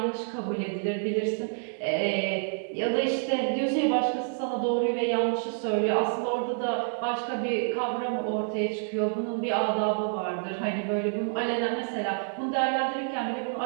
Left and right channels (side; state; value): left; silent; digital silence